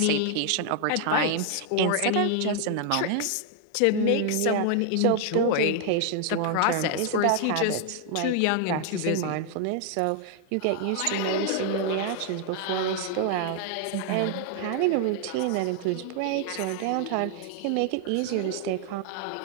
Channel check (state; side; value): different; both; correlation 0.00